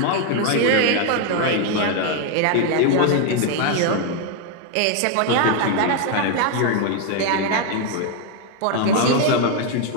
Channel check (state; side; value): different; both; correlation 0.01